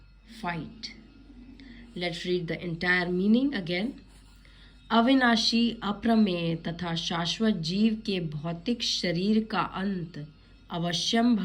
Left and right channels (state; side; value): identical; both; correlation 1.00